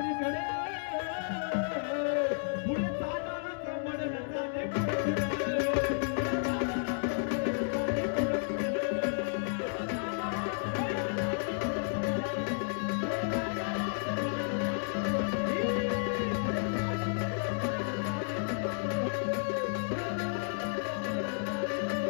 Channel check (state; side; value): silent; right; digital silence